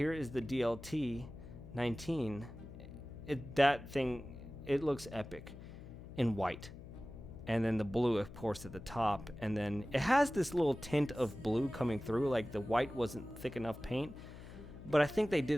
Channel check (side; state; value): left; noise; hum, 14 dB below the sound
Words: is the DLT 19. That thing, it looks epic in white. And then the blue, of course, at the top. And then it has this little tint of blue coming through, like the white wasn't thick enough paint. But I think they did